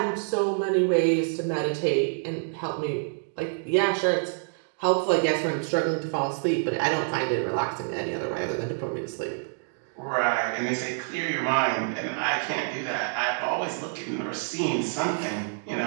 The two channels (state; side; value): silent; left; digital silence